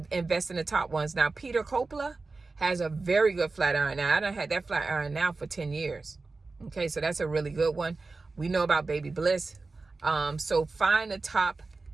invest in the top ones. Now, Peter Coppola has a very good flat iron. Now, I done had that flat iron now for 10 years. Okay, so that's a really good one. We know about Baby Bliss. So find the top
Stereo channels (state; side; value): quieter; left; 3.8 dB